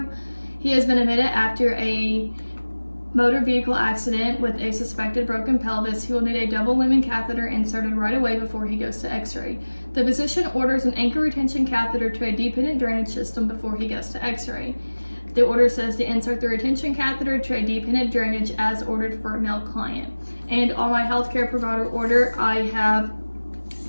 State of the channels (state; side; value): inverted; both; correlation -1.00